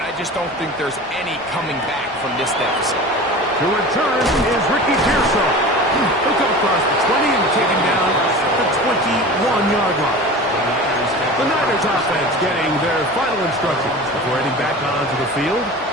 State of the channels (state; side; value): normal; both; correlation 0.35